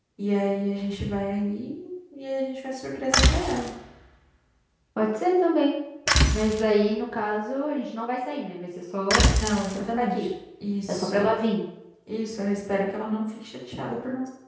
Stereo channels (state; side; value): identical; both; correlation 1.00